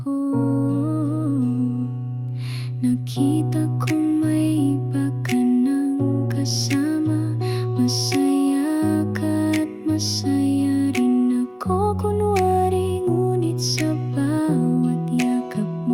ko. Nakita kong may iba ka ng kasama. Masaya ka at masaya rin ako kunwari. Ngunit sa bawat yakap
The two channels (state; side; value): identical; both; correlation 1.00